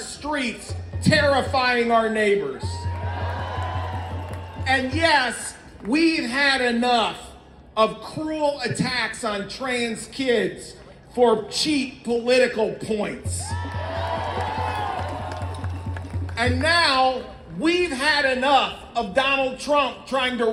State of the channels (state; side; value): identical; both; correlation 1.00